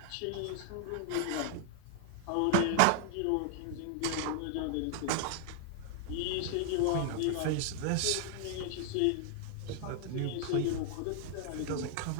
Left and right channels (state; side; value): different; both; correlation 0.00